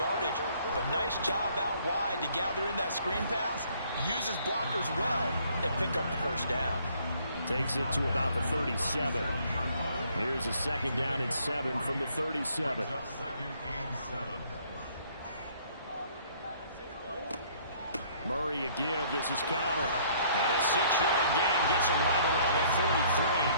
But nice job out wide to gather in that screen pass, use his blockers well, and pick up the first down. Takes it to about the 37. Here's a 2nd down and 7 from the 37. Murray a give. This is Connor. And a 6-yard gain gets him right around the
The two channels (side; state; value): both; inverted; correlation -0.61